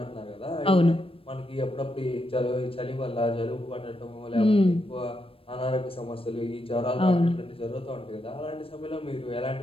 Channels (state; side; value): late; right; 0.27 ms